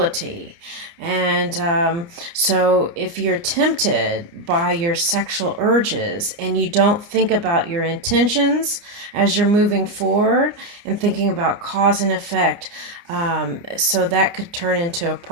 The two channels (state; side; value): late; left; 29 ms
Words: And so if you're tempted by your sexual urges and you don't think about your intentions as you're moving forward and thinking about cause and effect, so that could turn into a